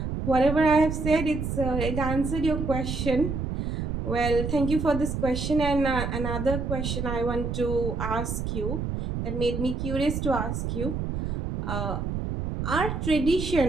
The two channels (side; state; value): right; noise; rumble, 3 dB below the sound